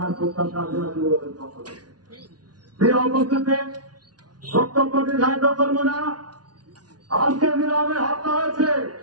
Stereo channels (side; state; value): left; late; 0.69 ms